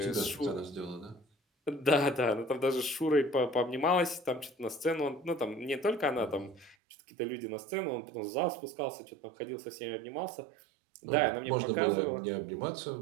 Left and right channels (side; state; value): left; drops out; at 6.8 s